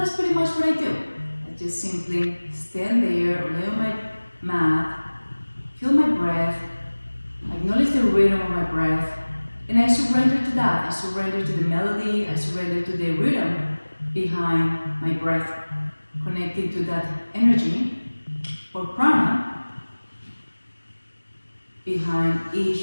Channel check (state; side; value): inverted; both; correlation -1.00